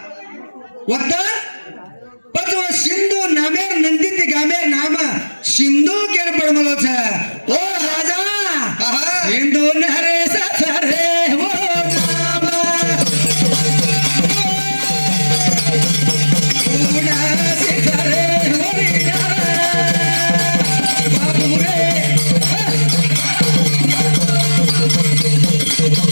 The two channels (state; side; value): inverted; both; correlation -1.00